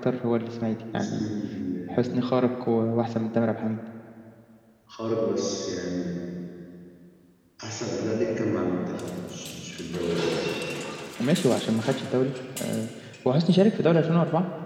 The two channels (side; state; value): both; identical; correlation 1.00